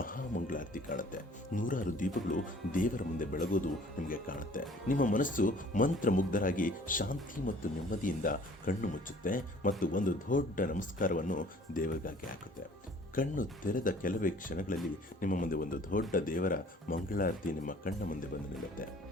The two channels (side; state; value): both; normal; correlation 0.53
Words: ಮಂಗಳಾರತಿ ಕಾಣುತ್ತೆ. ನೂರಾರು ದೀಪಗಳು ದೇವರ ಮುಂದೆ ಬೆಳಗೋದು ನಿಮಗೆ ಕಾಣುತ್ತೆ. ನಿಮ್ಮ ಮನಸ್ಸು ಮಂತ್ರಮುಗ್ಧರಾಗಿ ಶಾಂತಿ ಮತ್ತು ನೆಮ್ಮದಿಯಿಂದ ಕಣ್ಣು ಮುಚ್ಚುತ್ತೆ ಮತ್ತು ಒಂದು ದೊಡ್ಡ ನಮಸ್ಕಾರವನ್ನು ದೇವರಿಗಾಗಿ ಹಾಕುತ್ತೆ. ಕಣ್ಣು ತೆರೆದ ಕೆಲವೇ ಕ್ಷಣಗಳಲ್ಲಿ ನಿಮ್ಮ ಮುಂದೆ ಒಂದು ದೊಡ್ಡ ದೇವರ ಮಂಗಳಾರತಿ ನಿಮ್ಮ ಕಣ್ಣ ಮುಂದೆ ಬಂದು ನಿಲ್ಲುತ್ತೆ.